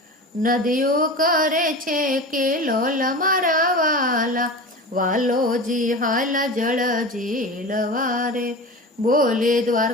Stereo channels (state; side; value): normal; both; correlation 0.31